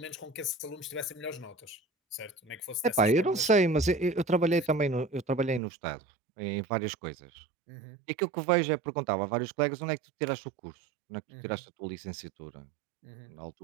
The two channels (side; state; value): left; drops out; at 5.6 s